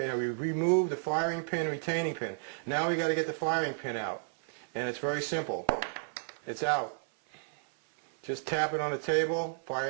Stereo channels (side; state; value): left; silent; 56 dB below the other